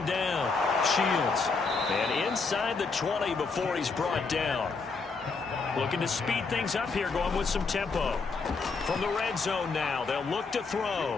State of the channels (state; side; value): quieter; right; 4.5 dB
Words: down, Shields. And inside the 20 before he's brought down. Looking to speed things up here, going with some tempo. From the red zone now, they'll look to